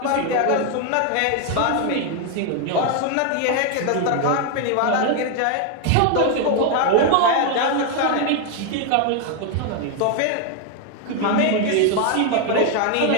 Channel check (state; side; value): different; both; correlation 0.01